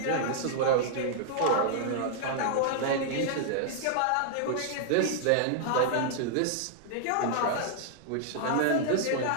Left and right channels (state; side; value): different; both; correlation -0.01